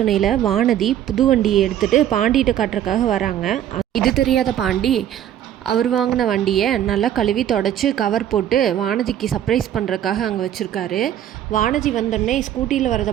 வானதி புது வண்டியை எடுத்துகிட்டு பாண்டிகிட்ட காட்டுறதுக்காக வராங்க. இது தெரியாத பாண்டி அவர் வாங்கின வண்டியை நல்லா கழுவி தொடச்சி கவர் போட்டு வானதிக்கு சர்ப்ரைஸ் பண்ணுறதுக்காக அங்கே வச்சுருக்காரு. வானதி வந்தோடனே ஸ்கூட்டியில் வரதை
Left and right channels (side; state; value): left; quieter; 11.0 dB